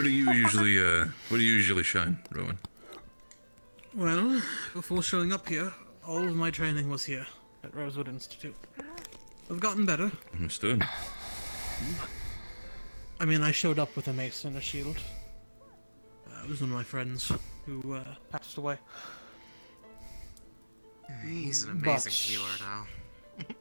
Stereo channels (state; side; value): inverted; both; correlation -1.00